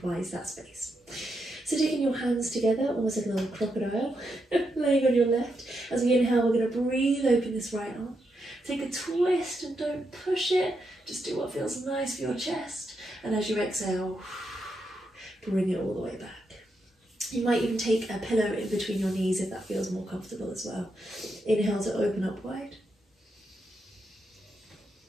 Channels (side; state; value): both; normal; correlation 0.83